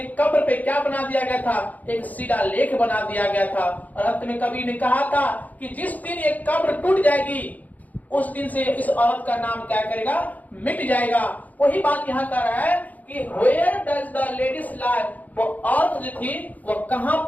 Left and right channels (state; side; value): late; right; 0.078 ms